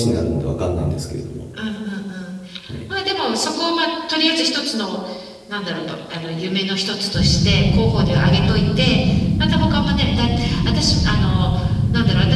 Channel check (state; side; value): identical; both; correlation 1.00